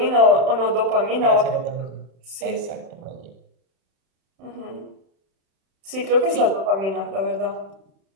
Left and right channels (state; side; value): late; left; 31 ms